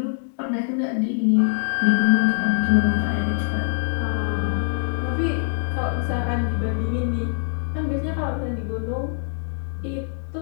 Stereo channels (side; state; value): right; silent; digital silence